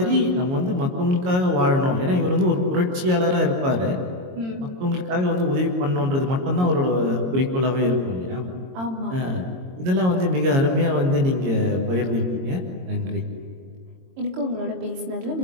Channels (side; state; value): left; late; 22 ms